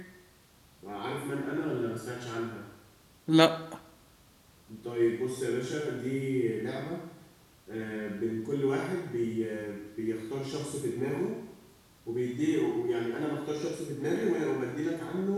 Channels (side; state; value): both; identical; correlation 1.00